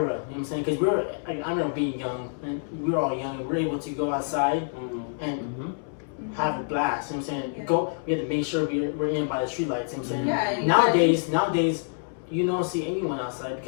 You know what I'm saying? Because we were, like, I remember being young, and we were all young, and we were able to go outside and have a blast. You know what I'm saying? Yeah. We had to make sure we're in by the street lights. You know what I'm saying? Yeah, and Nowadays, you don't see anyone outside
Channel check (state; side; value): silent; right; 60 dB below the other